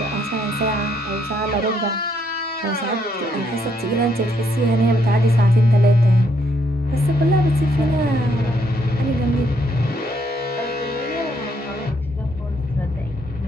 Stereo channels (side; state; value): both; normal; correlation 0.72